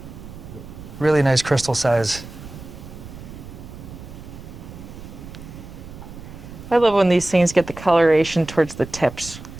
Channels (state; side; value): noise; right; rumble, 14 dB below the sound